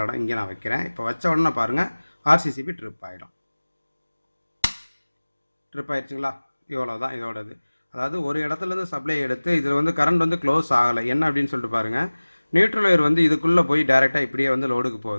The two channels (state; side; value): inverted; both; correlation -1.00